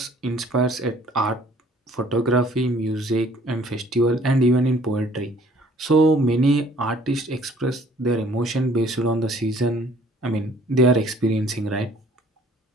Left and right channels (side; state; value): both; normal; correlation 0.57